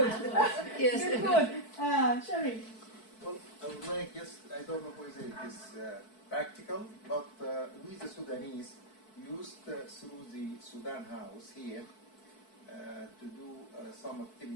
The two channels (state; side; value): late; right; 4.6 ms